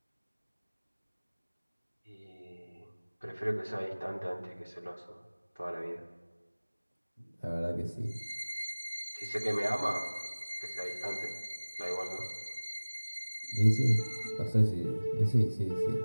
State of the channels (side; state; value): both; inverted; correlation -1.00